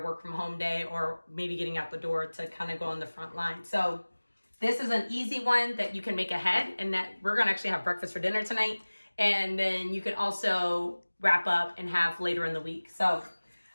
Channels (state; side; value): inverted; both; correlation -1.00